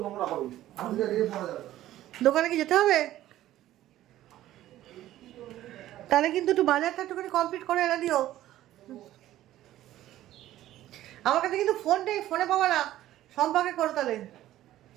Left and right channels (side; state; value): left; quieter; 14.0 dB